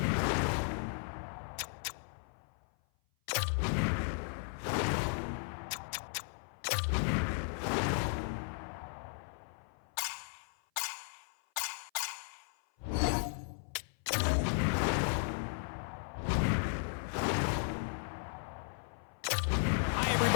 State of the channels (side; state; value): right; silent; 54 dB below the other